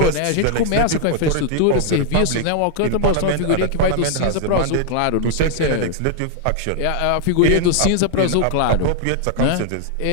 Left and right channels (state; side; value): different; both; correlation 0.00